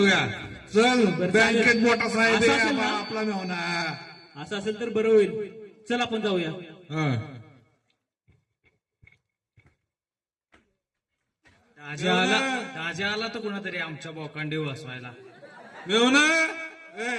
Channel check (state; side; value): identical; both; correlation 1.00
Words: चल बँकेत मोठा साहेब असं आहे असेल ना? आपला मेहना. असं असेल तर बरं होईल. चल आपण जाऊया. हा. राजा आला तर कुणातरी आमच्या बोकांडी वाचवायला. मेहना